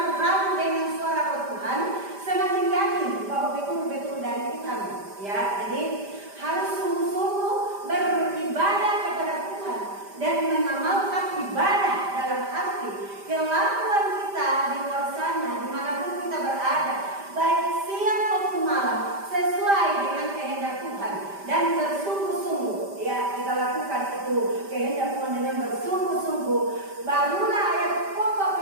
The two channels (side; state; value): left; late; 5.1 ms